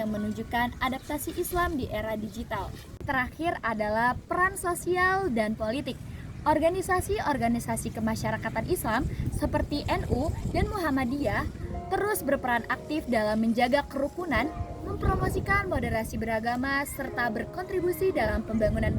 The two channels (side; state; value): both; identical; correlation 1.00